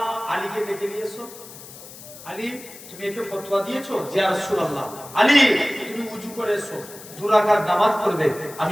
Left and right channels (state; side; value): noise; left; hiss, 16 dB below the sound